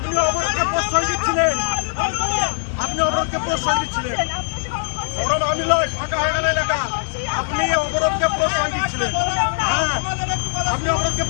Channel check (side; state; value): right; silent; 65 dB below the other